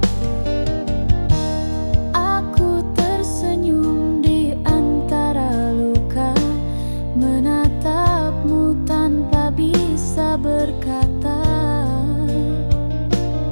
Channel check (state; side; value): inverted; both; correlation -1.00